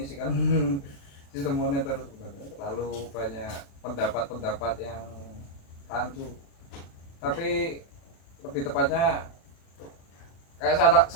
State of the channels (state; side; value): late; right; 36 ms